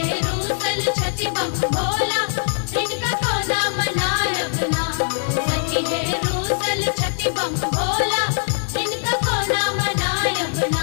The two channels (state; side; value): silent; right; digital silence